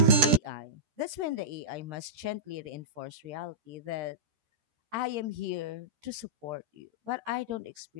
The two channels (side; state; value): left; late; 13 ms